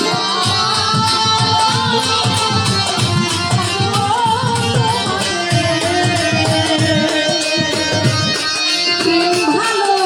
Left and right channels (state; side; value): identical; both; correlation 1.00